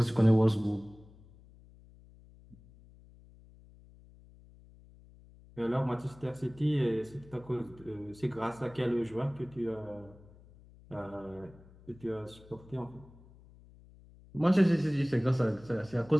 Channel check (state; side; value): noise; left; hum, 23 dB below the sound